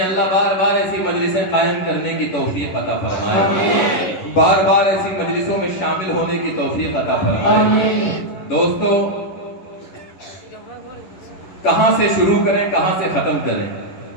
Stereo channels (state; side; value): late; right; 11 ms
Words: بار بار ایسی مجلسیں قائم کرنے کی توفیق عطا فرمائے، بار بار ایسی مجلسوں میں شامل ہونے کی توفیق عطا فرمائے۔ دوستو، کہاں سے شروع کریں کہاں سے ختم کریں